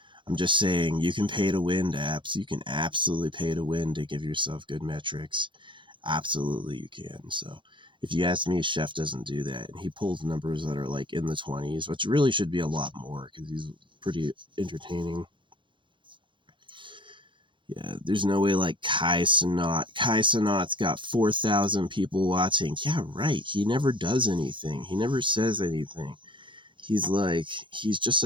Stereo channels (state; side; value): late; left; 0.23 ms